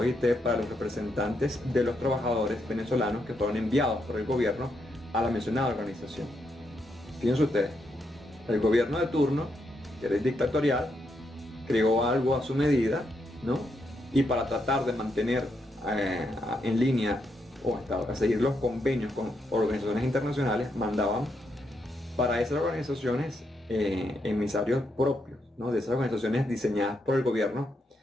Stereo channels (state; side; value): normal; both; correlation 0.80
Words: para los representantes de los trabajadores venezolanos que fueron enviados por el gobierno a la mencionada organización. Fíjense ustedes, el gobierno de turno, que era dictatorial, creó algo a su medida, ¿no? Y para tratar de mantener en línea o a seguir los convenios con organizaciones internacionales, mandaban para esas organizaciones emisarios propios, ¿no? De esas organizaciones diseñadas por el gobierno